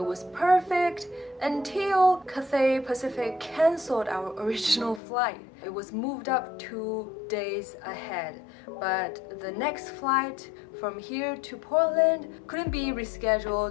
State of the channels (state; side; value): drops out; right; at 5.0 s